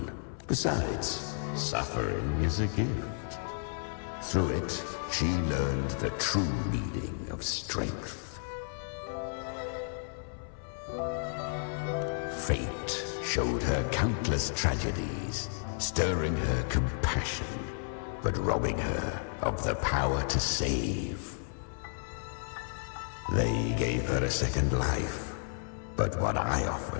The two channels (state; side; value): silent; right; 56 dB below the other